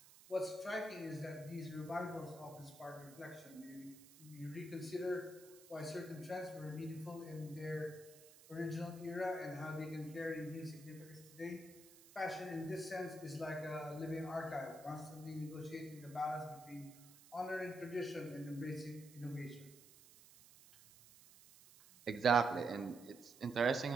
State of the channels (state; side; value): noise; right; hiss, 20 dB below the sound